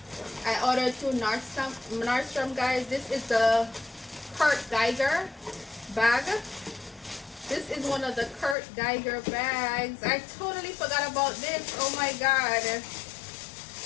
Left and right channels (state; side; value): drops out; right; at 8.6 s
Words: I ordered through Nordstrom, guys. This is the Kirk Geiger bag. This is one of the Kirk Geiger bags. I totally forgot about this. Oh my god.